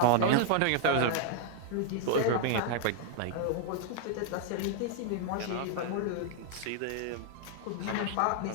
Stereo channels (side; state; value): both; different; correlation 0.00